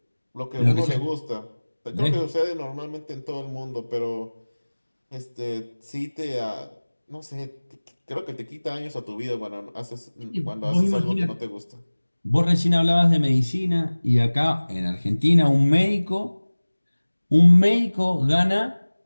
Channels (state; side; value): inverted; both; correlation -1.00